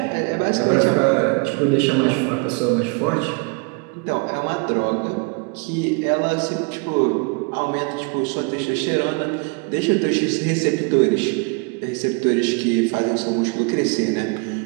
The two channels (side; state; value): left; quieter; 32.4 dB